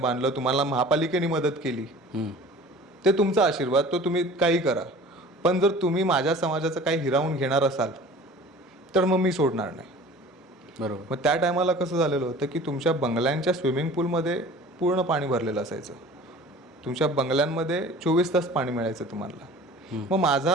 तुम्हाला महापालिकेने मदत केली, ते तुमचा आशीर्वाद, तो तुम्ही काही करा. पण जर तुम्ही माझ्या समाजाचं काही हिरावून घेणार असाल तर मग मी सोडणार नाही. बरोबर. मग त्या टायमाला कसं झालेलं होतं की तुमच्या बंगल्यांच्या स्विमिंग पूलमध्ये पूर्ण पाणी भरलेलं असायचं. तुमच्या बंगल्यांमध्ये 24 तास पाणी मिळायचं तुम्हाला. मग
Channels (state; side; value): normal; both; correlation 0.44